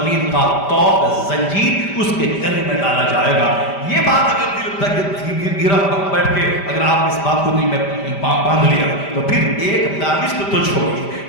کا توق زنجیر اس کے گلے میں ڈالا جائے گا۔ یہ بات اگر دل تک گرا بیٹھ کے اگر آپ اس بات کو دل میں باندھ لیا تو پھر 1 دانش تو چھوڑی،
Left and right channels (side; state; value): right; late; 5.1 ms